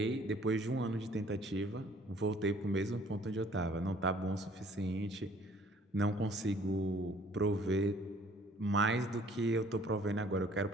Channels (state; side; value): normal; both; correlation 0.57